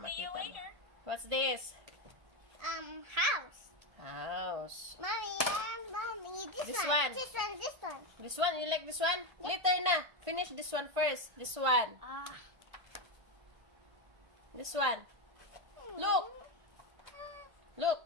See you makita mo. later. What's this? House. House. Mommy, this This one. one. This one. This one. This one? You like this one? Later na. Finish this one first. This one. This one. Look.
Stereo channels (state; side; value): late; left; 1.5 ms